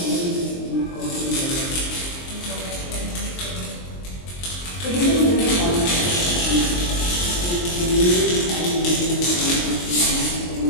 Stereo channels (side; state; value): right; late; 23 ms